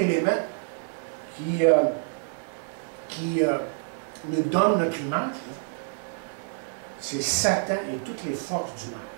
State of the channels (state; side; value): silent; left; digital silence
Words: qui nous donne notre image, c'est Satan et toutes les forces du mal.